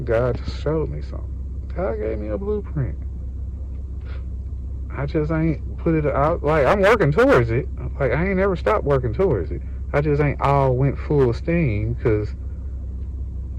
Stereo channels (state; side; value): identical; both; correlation 1.00